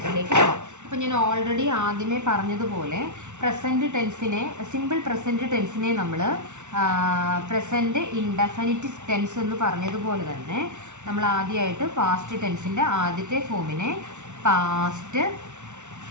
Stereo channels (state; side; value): late; left; 0.84 ms